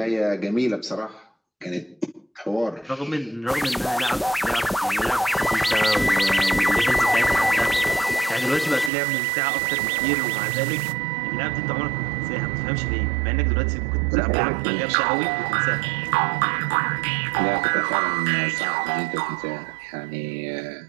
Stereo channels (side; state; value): left; drops out; at 8.9 s